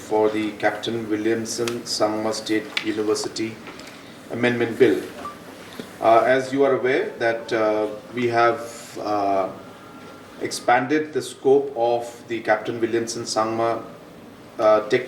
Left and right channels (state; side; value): identical; both; correlation 1.00